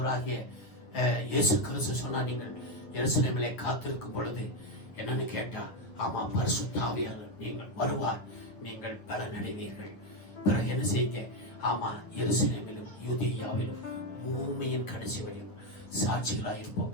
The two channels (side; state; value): right; late; 9.4 ms